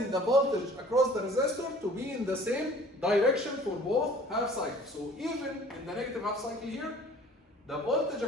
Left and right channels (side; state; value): both; normal; correlation 0.50